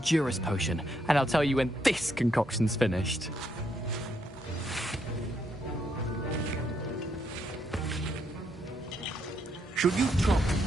potion, and I'll tell you when this concoction's finished. Should you chop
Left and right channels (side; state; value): both; normal; correlation 0.76